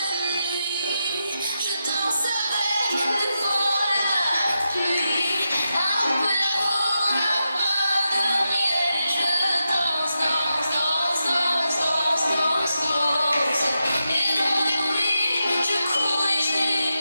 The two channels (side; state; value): both; inverted; correlation -0.87